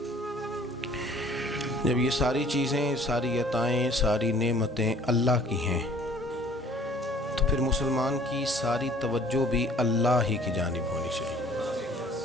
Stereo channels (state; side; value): normal; both; correlation 0.54